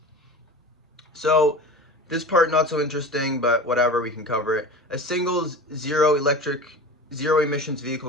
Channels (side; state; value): both; normal; correlation 0.33